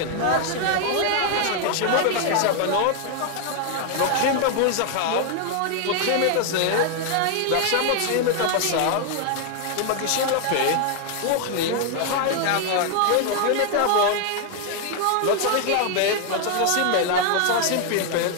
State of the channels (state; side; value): different; both; correlation 0.00